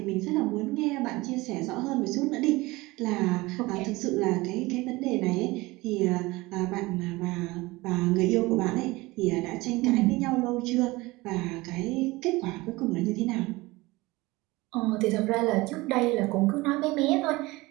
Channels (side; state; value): left; quieter; 21.4 dB